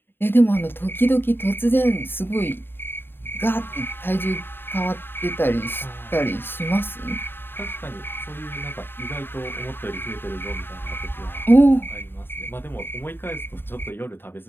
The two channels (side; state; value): right; late; 0.10 ms